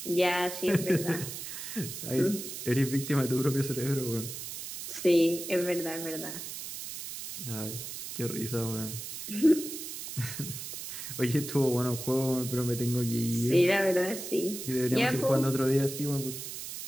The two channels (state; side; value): noise; right; hiss, 8 dB below the sound